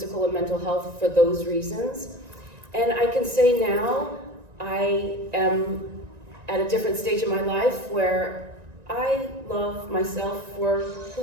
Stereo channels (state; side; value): late; left; 1.9 ms